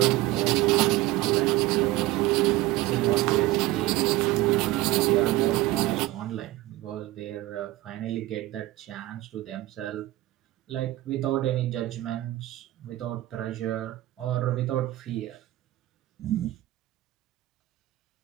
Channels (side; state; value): left; quieter; 17.2 dB